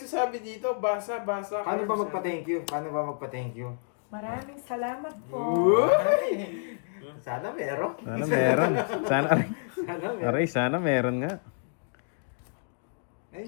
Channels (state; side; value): silent; right; digital silence